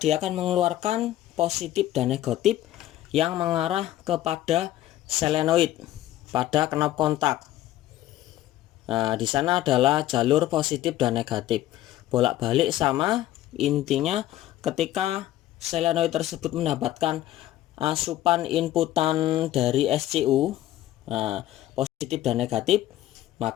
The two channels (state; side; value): quieter; right; 14.0 dB